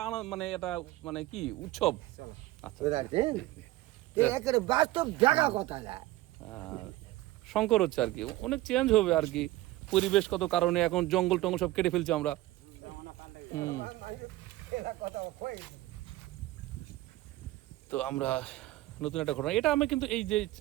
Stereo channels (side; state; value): left; quieter; 17.2 dB